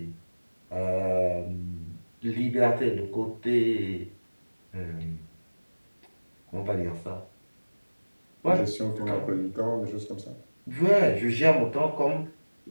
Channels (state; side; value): inverted; both; correlation -1.00